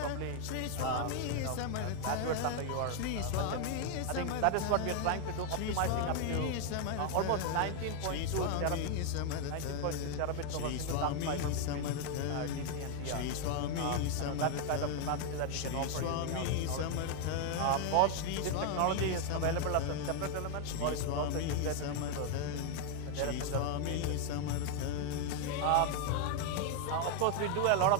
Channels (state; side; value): different; both; correlation 0.00